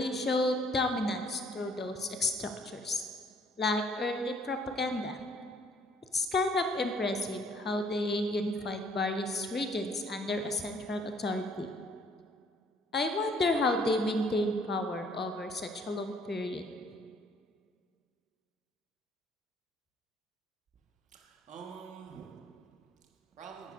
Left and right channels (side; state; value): both; normal; correlation 0.61